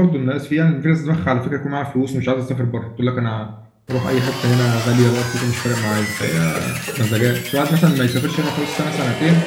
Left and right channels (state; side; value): identical; both; correlation 1.00